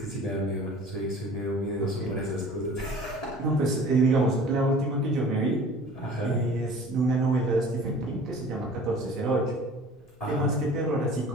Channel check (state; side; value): normal; both; correlation 0.46